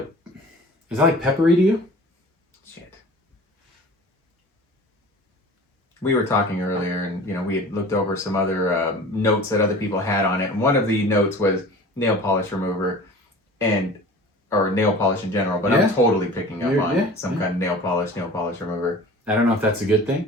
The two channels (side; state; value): both; normal; correlation 0.41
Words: peppery to you? Shit. We were talking earlier, and we had looked over some other notes that other people had on it. And one of the notes was nail polish remover, or nail polish in general. But I'm totally picking up on some kind of nail polish remover. I don't know if that's a good thing.